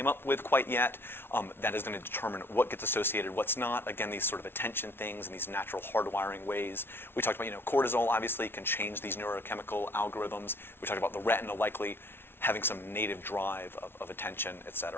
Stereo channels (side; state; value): right; late; 0.11 ms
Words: up with quite yet. That is going to determine what gets associated, what's not. Again, these sort of attention things and these natural hardwiring ways. We talked about, cortisol obviously can change these neurochemical algorithms. We talked about the retina likely having some native drive of attention, et